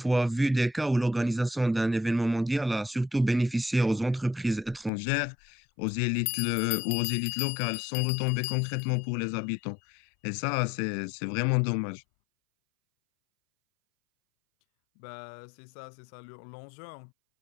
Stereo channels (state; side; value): drops out; right; at 4.9 s